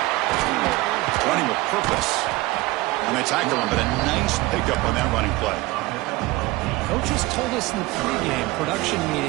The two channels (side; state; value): left; quieter; 20.3 dB